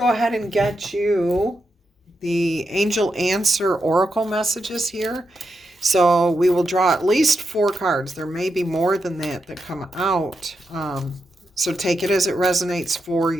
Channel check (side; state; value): both; normal; correlation 0.85